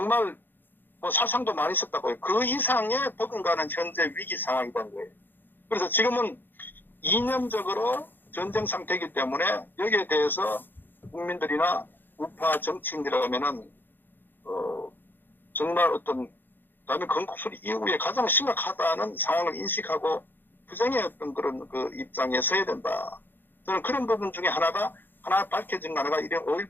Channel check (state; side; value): late; right; 0.094 ms